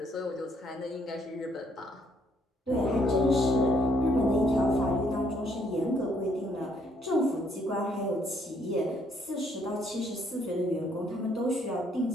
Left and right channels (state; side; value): normal; both; correlation 0.68